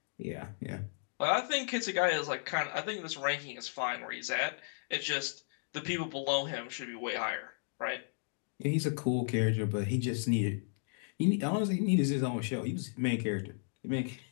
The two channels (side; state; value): right; silent; digital silence